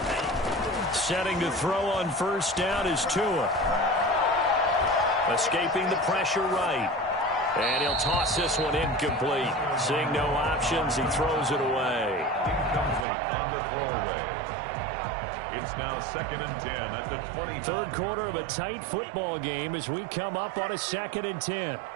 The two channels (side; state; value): left; drops out; at 13.1 s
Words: Setting to throw on first down is Tua. Escaping the pressure right. And he'll toss this one incomplete. Seeing no options, he throws it away. Incomplete on the throwaway. It's now second and 10 at the 20. Third quarter of a tight football game as we come up on a second and 10.